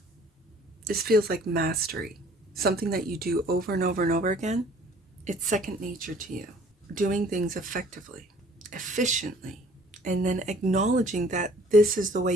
This feels like mastery, something that you do over and over and over again. It's second nature to you. Doing things effectively, efficiently, and then acknowledging that this is the way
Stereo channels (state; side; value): normal; both; correlation 0.54